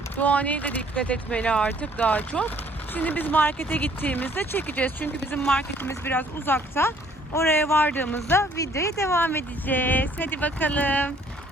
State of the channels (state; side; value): normal; both; correlation 0.60